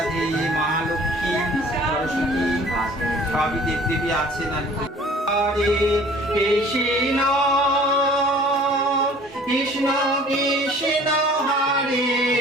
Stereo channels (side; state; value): both; normal; correlation 0.50